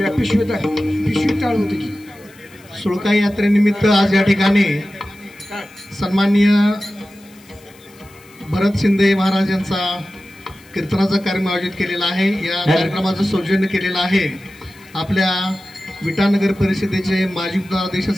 पिशवी टाळ होती की सुळका यात्रेनिमित्त आज या ठिकाणी सन्माननीय भरत शिंदे महाराज यांचा कीर्तनाचा कार्यक्रम आयोजित केलेला आहे। या कार्यक्रमाचं सौजन्य केलेलं आहे आपल्या विटानगर परिषदेचे माजी उपाध्यक्ष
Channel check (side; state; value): left; noise; hiss, 27 dB below the sound